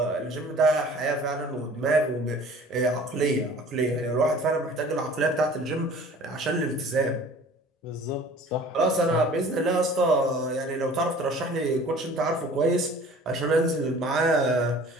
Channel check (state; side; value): normal; both; correlation 0.47